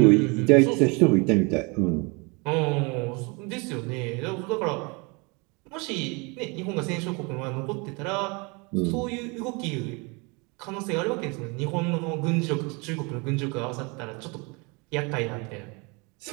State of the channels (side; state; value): left; quieter; 29.4 dB